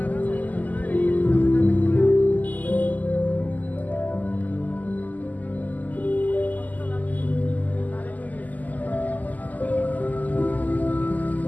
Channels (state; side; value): late; right; 0.079 ms